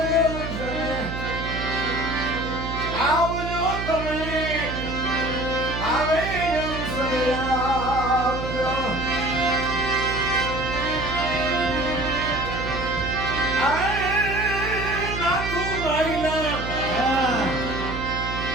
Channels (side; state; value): right; noise; hum, 6 dB below the sound